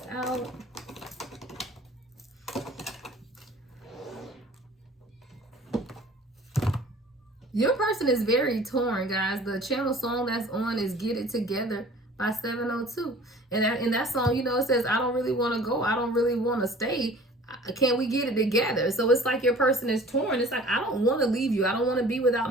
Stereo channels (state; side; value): normal; both; correlation 0.47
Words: out. Your person is very torn, guys. The channel song that's on is Get It Together by 702. And that song, you know, it says, I don't really want to go. I don't really want to stay. Can we get it together? So it's like your person is torn. It's like, I don't want to leave you. I don't want to be without